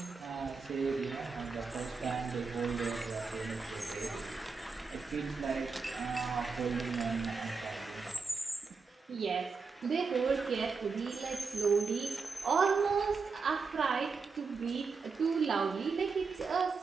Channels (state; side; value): quieter; left; 4.7 dB